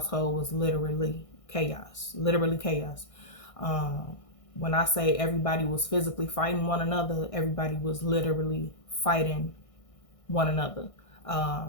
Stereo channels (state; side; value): late; right; 1.6 ms